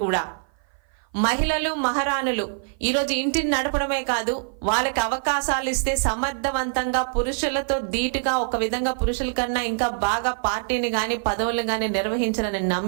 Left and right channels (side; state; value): left; silent; 55 dB below the other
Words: కూడా మహిళలు, మహారాణులు ఈరోజు ఇంటిని నడపడమే కాదు, వాళ్ళకి అవకాశాలు ఇస్తే సమర్థవంతంగా పురుషులతో ధీటుగా, ఒక విధంగా పురుషుల కన్నా ఇంకా బాగా పార్టీని కానీ, పదవులను కానీ నిర్వహించాలని